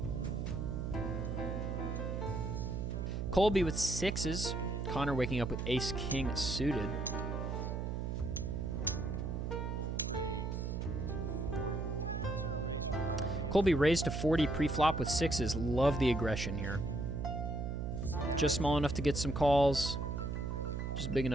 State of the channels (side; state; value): right; noise; hum, 2 dB below the sound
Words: Colby with 6s. Connor waking up with ace-king suited. Colby raised to 40 pre-flop with 6s. Love the aggression here. Just small enough to get some calls. Just big